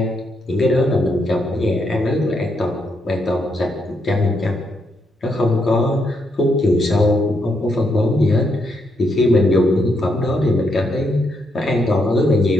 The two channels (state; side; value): normal; both; correlation 0.78